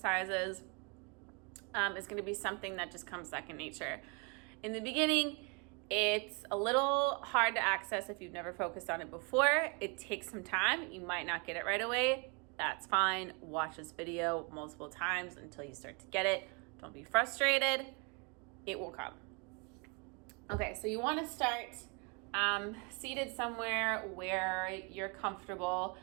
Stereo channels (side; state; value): left; quieter; 33.1 dB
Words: is going to be something that just comes second nature. In the beginning, it's a little hard to access if you've never focused on it before. It takes some time. You might not get it right away. That's fine. Watch this video multiple times until you start to get it. Don't be frustrated. It will come. Okay, so you want to start seated somewhere where you're comfortable.